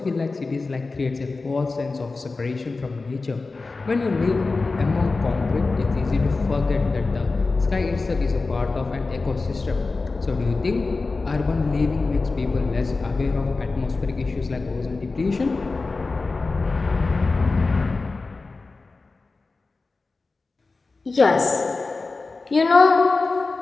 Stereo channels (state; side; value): quieter; right; 3.8 dB